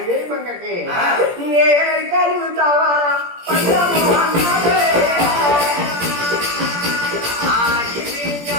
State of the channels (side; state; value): left; late; 17 ms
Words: వేరమంటకి నేను కలుగుతావా